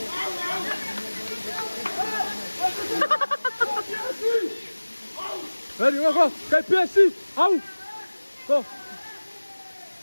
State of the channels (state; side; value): inverted; both; correlation -1.00